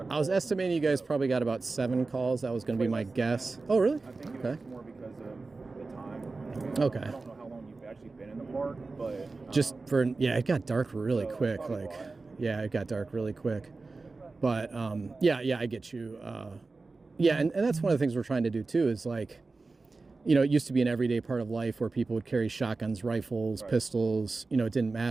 of calls. I was estimating you guys probably got about 7 calls. That was going to be my guess. Oh, really? I think it was more because of the time. Okay. I don't know how long you've actually been in the park, but it got dark really quick. It got dark really quick. But I get you. And that's one of the things we're trying to do too. Is like, it used to be an everyday part of life where people would carry shotguns, rifles, pistols. It didn't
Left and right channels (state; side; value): quieter; left; 3.8 dB